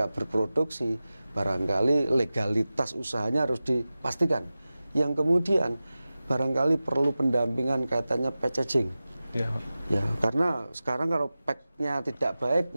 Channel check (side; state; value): both; inverted; correlation -0.95